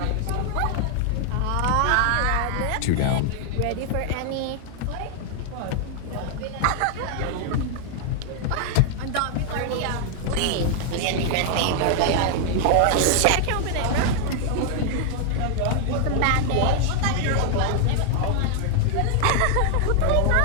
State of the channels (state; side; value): different; both; correlation 0.00